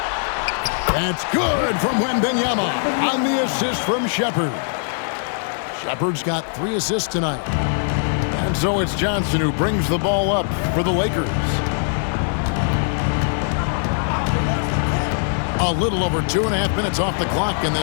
That's good from Wembanyama on the assist from Shepard. Shepard's got 3 assists tonight. And so it's Johnson who brings the ball up for the Lakers. A little over 2.5 minutes off the clock in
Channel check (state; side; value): silent; right; digital silence